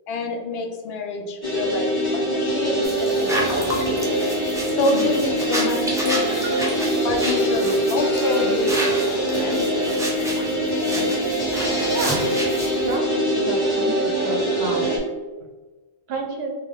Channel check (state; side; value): normal; both; correlation 0.09